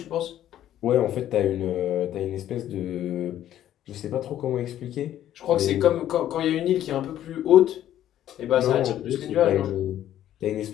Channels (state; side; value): quieter; right; 11.9 dB